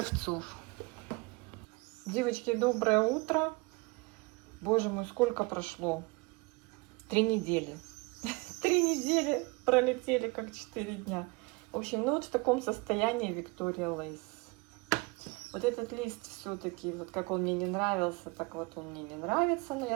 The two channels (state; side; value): quieter; left; 27.1 dB